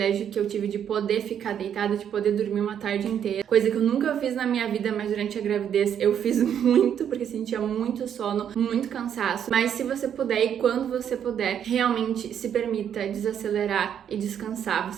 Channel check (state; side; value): quieter; left; 8.9 dB